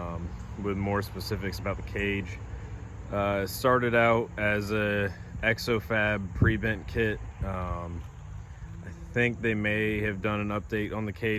with more specifics about the cage. It started out as a XO-Fab pre-bent kit. I think they may have done an update on the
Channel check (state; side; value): identical; both; correlation 1.00